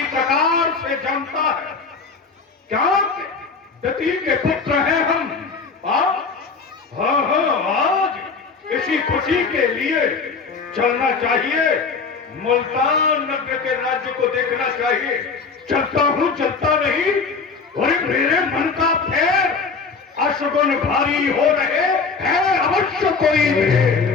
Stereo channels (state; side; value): quieter; right; 4.8 dB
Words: प्रकार से जानता है। क्या दती के पुत्र हैं हम? हाँ, आज इसी खुशी के लिए चलना चाहिए, मुल्तान नगर के राज्य को देखना चाहिए। चलता हूं, चलता नहीं, और मेरे मन का फेर अशुगुन भारी हो रहे हैं, अवश्य कोई